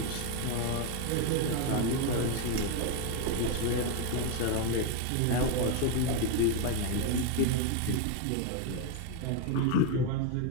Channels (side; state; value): both; different; correlation 0.01